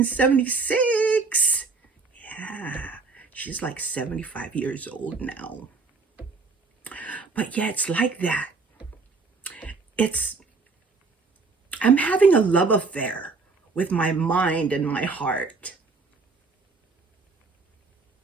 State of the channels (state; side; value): quieter; left; 4.2 dB